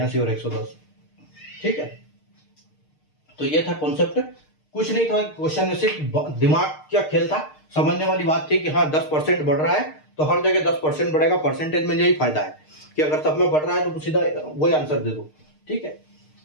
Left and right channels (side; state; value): right; late; 6.5 ms